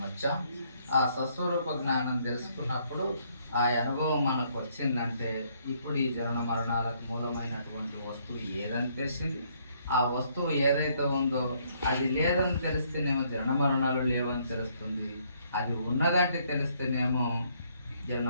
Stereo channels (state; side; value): inverted; both; correlation -0.68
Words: వచ్చాం. ఆ స్వస్వరూప జ్ఞానం తెలుసుకున్నప్పుడు ఆ అనుభవం మనకు వచ్చిందంటే ఇప్పుడు ఈ జనన మరణాలకు మూలమైనటువంటి వస్తువు ఏదని తెలిసింది. ఆ వస్తువు ఏదైతే ఉందో అది లేదని తెలిస్తేనేమో జనన మరణాలు లేవని తెలుస్తుంది. అది ఉన్నదంటే తెలిస్తేనేమో జనన